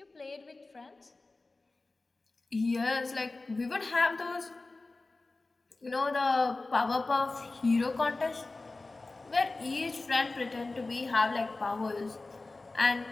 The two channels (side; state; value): right; quieter; 3.3 dB